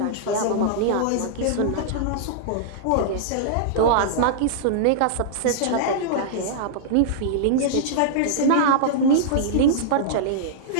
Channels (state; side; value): different; both; correlation -0.02